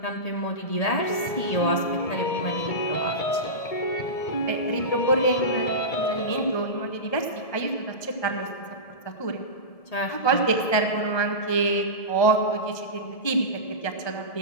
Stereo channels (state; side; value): late; right; 1.7 ms